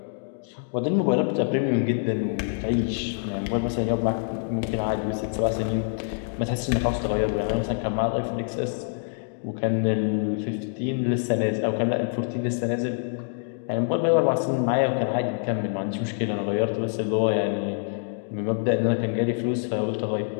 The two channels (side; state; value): right; silent; digital silence